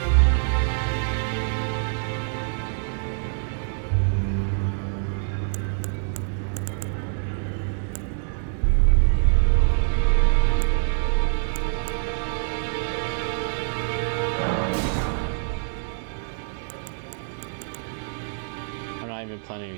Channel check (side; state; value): left; silent; 62 dB below the other